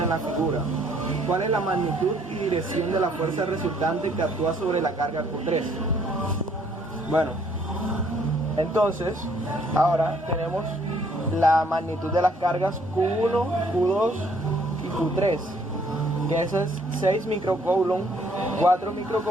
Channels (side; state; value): both; normal; correlation 0.64